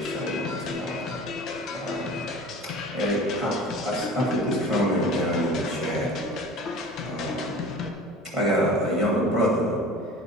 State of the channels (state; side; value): normal; both; correlation 0.40